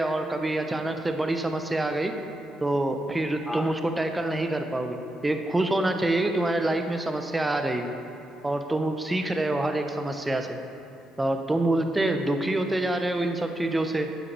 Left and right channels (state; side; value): normal; both; correlation 0.86